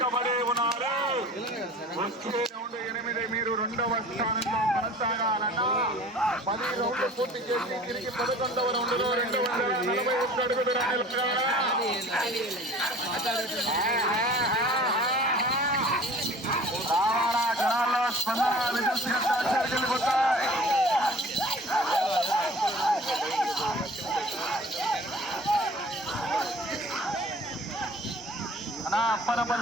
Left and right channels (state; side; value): normal; both; correlation 0.46